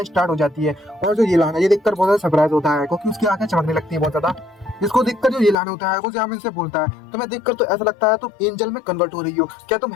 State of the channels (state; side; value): drops out; right; at 5.6 s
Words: स्टार्ट हो जाती है। और जो ऐलान है ये देखकर बहुत ज्यादा सरप्राइज होता है क्योंकि उसकी आंखें चमकने लगती है बहुत ज्यादा, जिसको देखकर जो ऐलान होता है वो ज़ाओमिन से बोलता है, तुम्हें देखकर तो ऐसा लगता है तुम एंजल में कन्वर्ट हो रही हो, क्या तुम